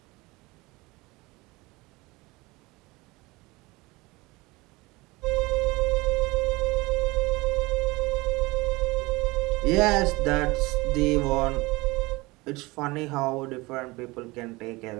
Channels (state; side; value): quieter; left; 22.7 dB